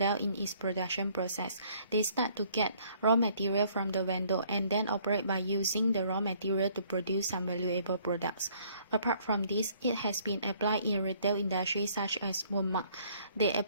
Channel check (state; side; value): inverted; both; correlation -0.61